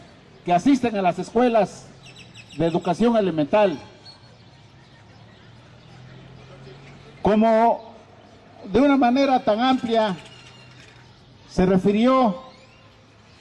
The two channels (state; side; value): identical; both; correlation 1.00